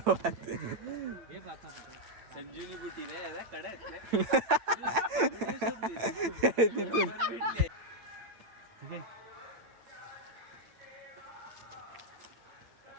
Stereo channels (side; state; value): left; late; 8.9 ms